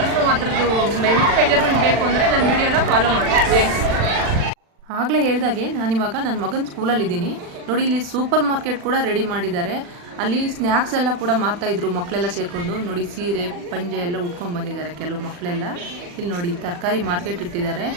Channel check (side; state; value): left; late; 40 ms